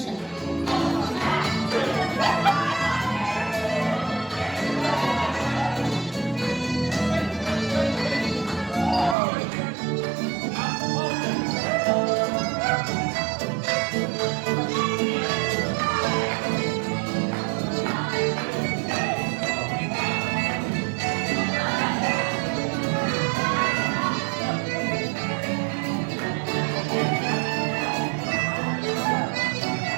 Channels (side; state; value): left; drops out; at 9.2 s